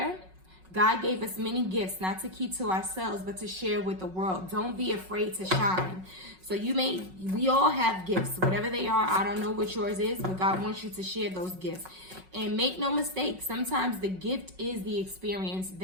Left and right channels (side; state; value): left; late; 5.4 ms